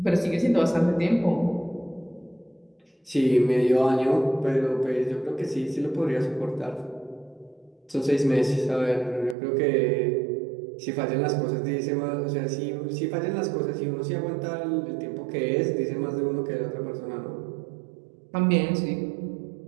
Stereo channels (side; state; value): left; drops out; at 9.3 s